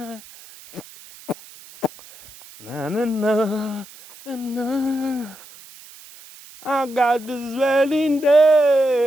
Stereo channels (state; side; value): noise; right; hiss, 20 dB below the sound